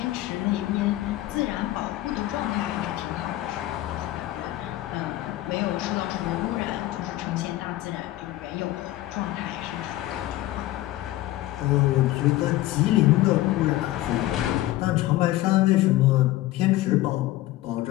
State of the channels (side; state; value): right; quieter; 16.1 dB